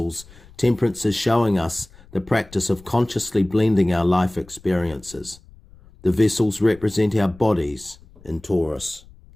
Temperance is showing us the practice of consciously blending our life experiences. The vessels represent our bodies in Taurus.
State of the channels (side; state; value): left; noise; rumble, 24 dB below the sound